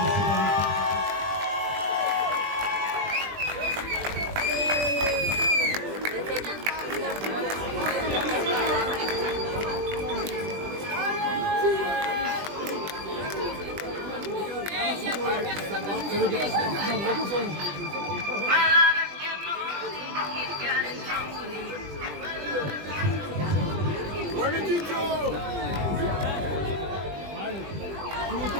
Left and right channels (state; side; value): late; left; 20 ms